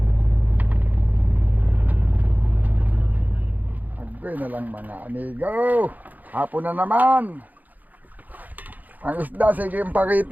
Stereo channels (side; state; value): left; late; 0.082 ms